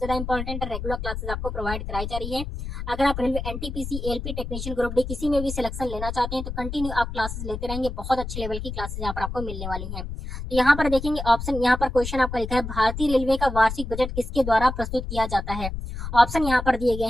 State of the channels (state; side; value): noise; left; rumble, 6 dB below the sound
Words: इंपॉर्टेंट है, रेगुलर क्लासेस आपको प्रोवाइड कराई जा रही है। अगर आप railway NTPC LP technician group D किसी में भी सिलेक्शन लेना चाहते हैं तो कंटिन्यू आप क्लासेस लेते रहेंगे, बहुत अच्छे लेवल की क्लासेस यहाँ पर आपको मिलने वाली है। तो यहाँ पर देखेंगे ऑप्शन, यहाँ पर क्वेश्चन आपका लिखा है भारतीय रेलवे का वार्षिक बजट किसके द्वारा प्रस्तुत किया जाता है। ऑप्शन यहाँ पर दिए गए